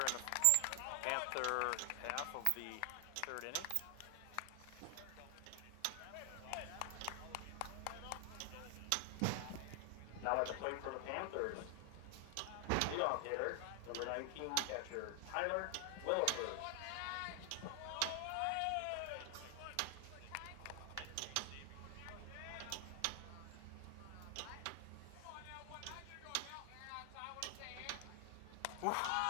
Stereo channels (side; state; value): both; different; correlation 0.00